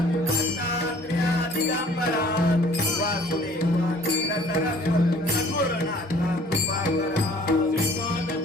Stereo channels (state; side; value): normal; both; correlation 0.54